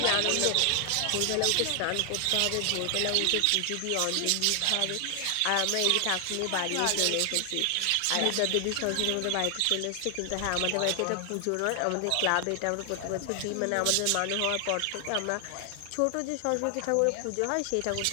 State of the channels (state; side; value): different; both; correlation 0.00